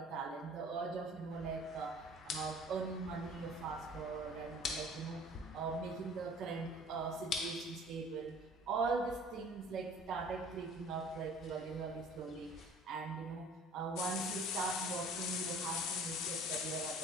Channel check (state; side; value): normal; both; correlation 0.49